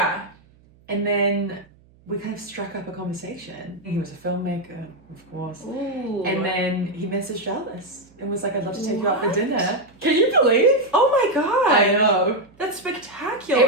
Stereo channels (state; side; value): noise; right; hum, 29 dB below the sound